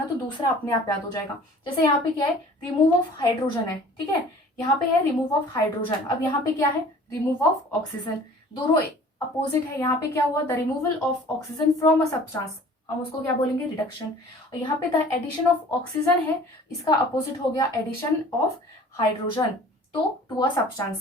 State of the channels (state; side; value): normal; both; correlation 0.48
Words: तो दूसरा अपने आप याद हो जाएगा। जैसे यहाँ पे क्या है, रिमूव ऑफ हाइड्रोजन है, ठीक है, यहाँ पे है रिमूव ऑफ हाइड्रोजन। अब यहाँ पे क्या है, रिमूव ऑफ ऑक्सीजन, दोनों अपोजिट है। यहाँ पे क्या हुआ, the removal of oxygen from a substance, हम उसको क्या बोलेंगे, रिडक्शन। और यहाँ पे द एडिशन ऑफ ऑक्सीजन है, इसका अपोजिट हो गया एडिशन ऑफ हाइड्रोजन तो टू अ